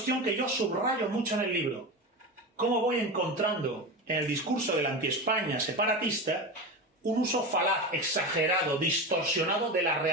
que yo subrayo mucho en el libro. ¿Cómo voy encontrando en el discurso de la anti-España separatista un uso falaz, exagerado, distorsionado de la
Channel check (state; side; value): normal; both; correlation 0.23